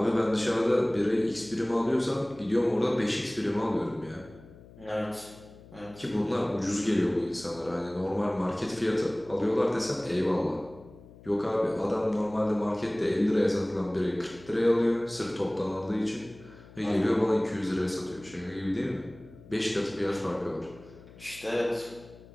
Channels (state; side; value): noise; left; hum, 21 dB below the sound